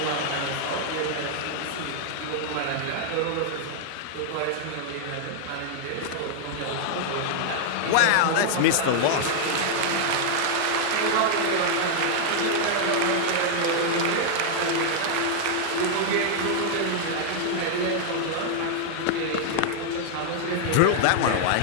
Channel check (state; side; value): different; both; correlation 0.00